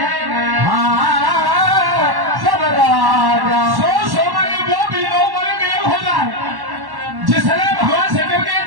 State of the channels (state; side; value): late; left; 1.1 ms